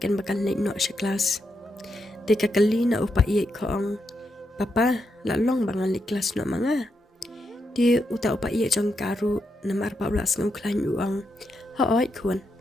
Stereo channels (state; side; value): normal; both; correlation 0.83